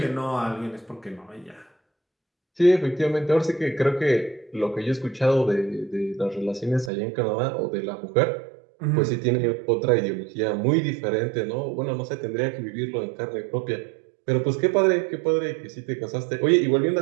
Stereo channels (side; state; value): left; drops out; at 6.9 s